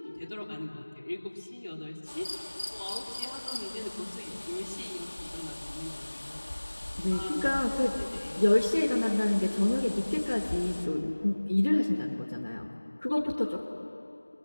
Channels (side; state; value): both; inverted; correlation -1.00